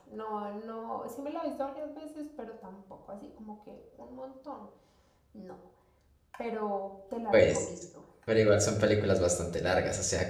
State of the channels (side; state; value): both; identical; correlation 1.00